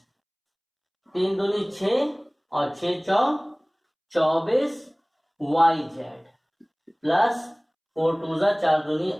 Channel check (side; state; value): both; identical; correlation 1.00